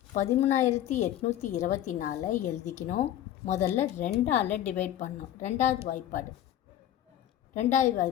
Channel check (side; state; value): right; quieter; 11.9 dB